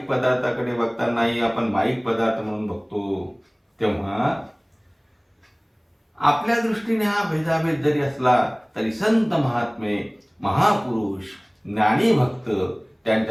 पदार्थाकडे बघतानाही आपण माईक पदार्थ म्हणून बघतो. तेव्हा आपल्या दृष्टीने हा भेदाभेद जरी असला तरी संत महात्मे महापुरुष ज्ञानी भक्त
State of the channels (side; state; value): both; identical; correlation 1.00